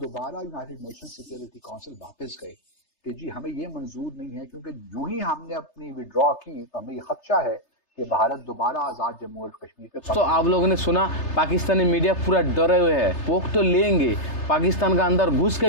یونائٹڈ نیشن سیکیورٹی کونسل واپس گئے کہ جی ہمیں یہ منظور نہیں ہے, کیونکہ جو ہی ہم نے اپنی وڈرا کی تو ہمیں یہ خدشہ ہے کہ بھارت دوبارہ آزاد جموں اور کشمیر کے. تو آپ لوگوں نے سنا پاکستانی میڈیا پورا ڈرے ہوئے ہے, پوک تو لیں گے, پاکستان کا اندر گھس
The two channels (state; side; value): late; right; 3.3 ms